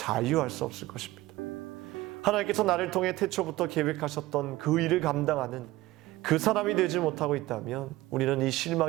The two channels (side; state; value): left; quieter; 18.0 dB